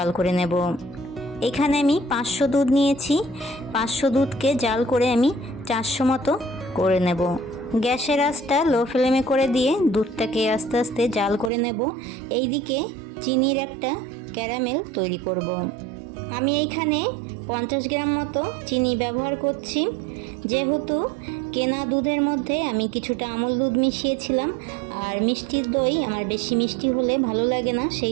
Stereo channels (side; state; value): left; drops out; at 11.5 s